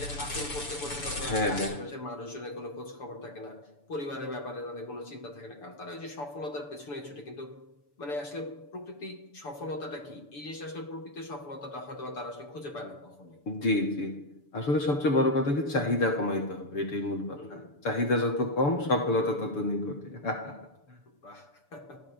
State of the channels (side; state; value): right; late; 6.9 ms